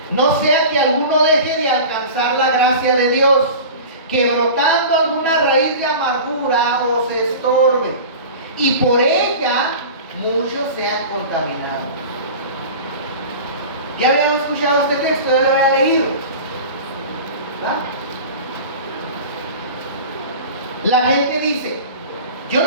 no sea que alguno deje de alcanzar la gracia de Dios, que brotando alguna raíz de amargura os estorbe, y por ella muchos sean contaminados. ¿Ya habíamos escuchado este texto? ¿Ya lo había leído? ¿verdad? La gente dice, yo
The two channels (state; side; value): inverted; both; correlation -0.35